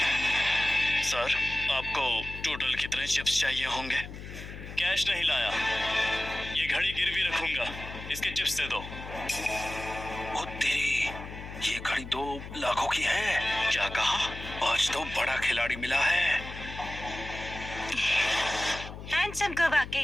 सर, आपको टोटल कितने चिप्स चाहिए होंगे? कैश नहीं लाया, ये घड़ी गिरवी रखूंगा, इसके चिप्स दे दो। ओ तेरी, ये घड़ी 2 लाखों की है। क्या कहा? आज तो बड़ा खिलाड़ी मिला है। हैंडसम को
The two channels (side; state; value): left; noise; hum, 11 dB below the sound